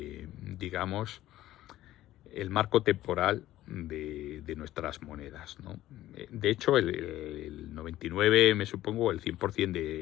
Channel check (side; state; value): right; quieter; 14.6 dB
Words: digamos, el marco temporal de nuestras monedas, ¿no? De hecho, el 99, me supongo, el 100%